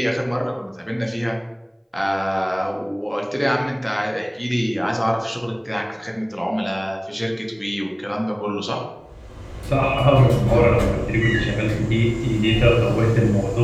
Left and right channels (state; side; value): identical; both; correlation 1.00